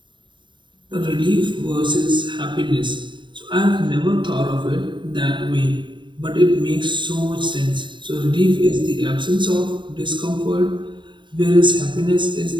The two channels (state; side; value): late; left; 0.23 ms